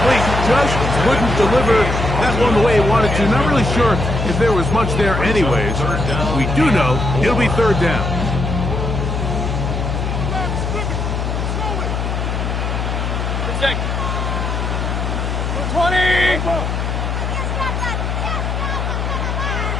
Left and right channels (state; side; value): noise; left; hum, 1 dB below the sound